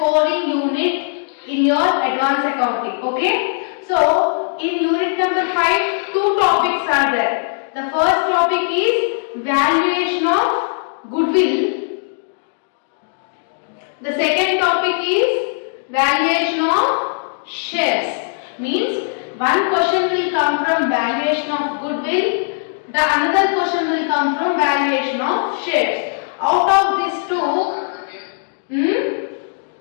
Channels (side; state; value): right; silent; digital silence